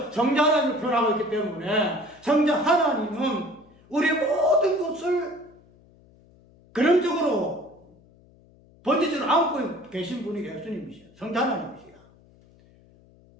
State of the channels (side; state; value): left; noise; hum, 28 dB below the sound